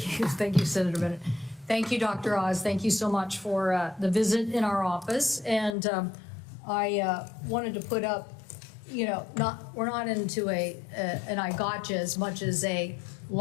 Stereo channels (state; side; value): drops out; right; at 5.8 s